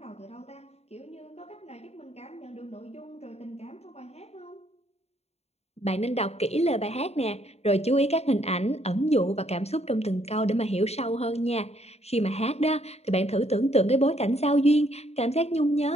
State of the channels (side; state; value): right; late; 0.31 ms